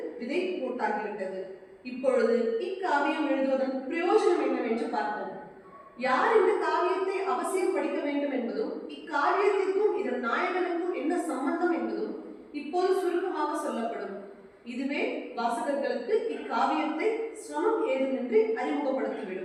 விதை போட்டாகிவிட்டது. இப்பொழுது இக்காவியம் எழுதுவதன் பிரயோஜனம் என்னவென்று பார்ப்போம். யார் இந்த காவியத்தை அவசியம் படிக்க வேண்டும் என்பதும் இக்காவியத்திற்கும் இதன் நாயகனுக்கும் என்ன சம்பந்தம் என்பதும் இப்போது சுருக்கமாக சொல்லப்படும். இதுவே வாசகர்களுக்கு இக்காவியத்தை சிரமம் ஏதுமின்றி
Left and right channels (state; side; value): identical; both; correlation 1.00